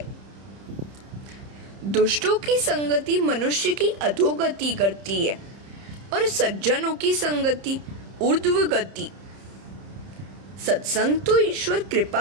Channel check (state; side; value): late; left; 30 ms